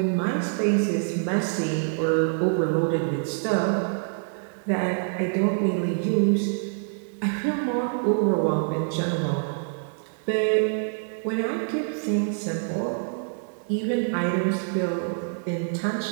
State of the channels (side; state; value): left; silent; digital silence